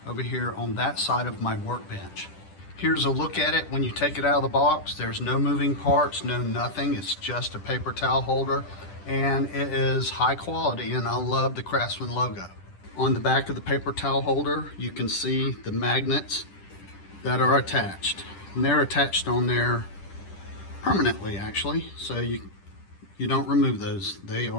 over here on that side of my workbench. Here's a look at it when you take it out of the box. There's no moving parts, no nothing. It's just a paper towel holder, and it is high quality, and I love the Craftsman logo. On the back of the paper towel holder, you can see the magnets that are attached. And they're attached on there permanently, actually, so you don't remove those. They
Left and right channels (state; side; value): late; right; 10 ms